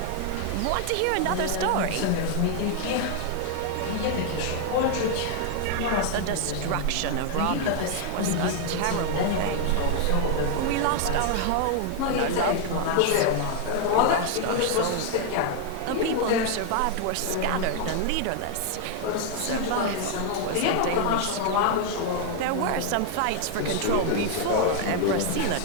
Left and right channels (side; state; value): both; different; correlation 0.00